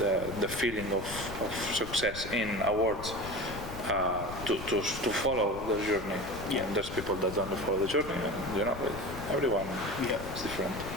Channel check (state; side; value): noise; left; rumble, 10 dB below the sound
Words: feeling of success in awards to follow the journey. And there's people that don't follow the journey, and everyone is different.